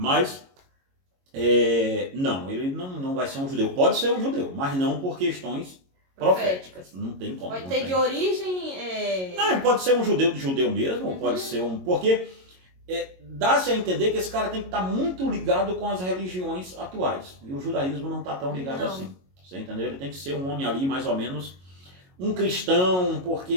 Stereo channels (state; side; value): late; left; 22 ms